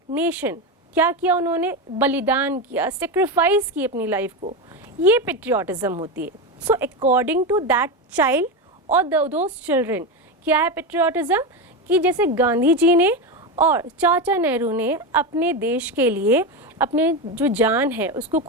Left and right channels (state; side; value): normal; both; correlation 0.15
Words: नेशन क्या किया, उन्होंने बलिदान किया, सेक्रीफाइस की अपनी लाइफ को, ये पेट्रियाटिज्म होती है। So according to that child और दोज चिल्ड्रन, क्या है पेट्रियाटिज्म? कि जैसे गांधी जी ने और चाचा नेहरू ने अपने देश के लिए अपने जो जान है उसको